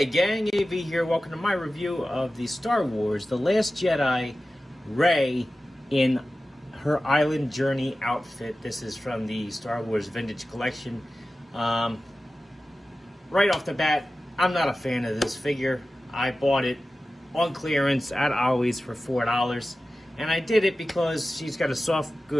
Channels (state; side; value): normal; both; correlation 0.95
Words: gang, AV here. Welcome to my review of the Star Wars The Last Jedi Rey in her Island Journey outfit. This is from the Star Wars Vintage Collection. Right off the bat, I'm not a fan of this figure. I bought it on clearance at Ollie's for $4. And I did it because she's got a soft